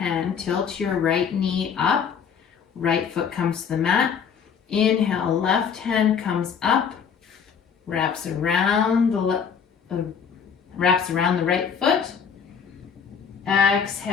tilt your right knee up, right foot comes to the mat. Inhale, left hand comes up, wraps around the right foot.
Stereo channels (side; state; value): right; quieter; 7.0 dB